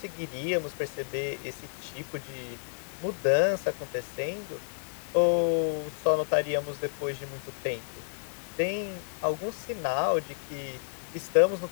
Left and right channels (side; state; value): right; silent; digital silence